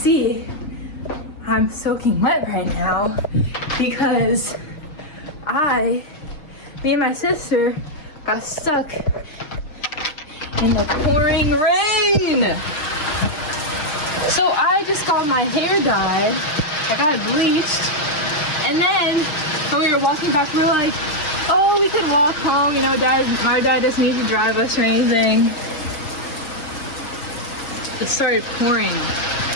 I'm soaking wet right now because me and my sister got stuck in the pouring rain. So I just got my hair dyed, I got it bleached, and then when we were walking back, we were like, oh, we could walk home, you know, our dad doesn't need to drive us or anything. It started pouring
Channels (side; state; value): right; late; 6.5 ms